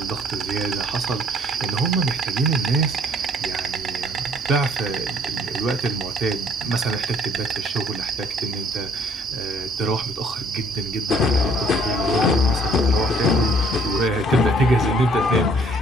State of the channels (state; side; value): normal; both; correlation 0.60